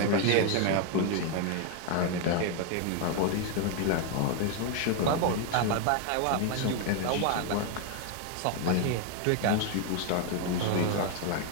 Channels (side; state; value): both; different; correlation 0.01